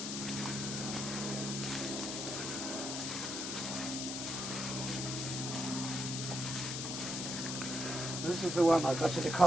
This is the one I got you to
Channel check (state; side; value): noise; left; hiss, 3 dB below the sound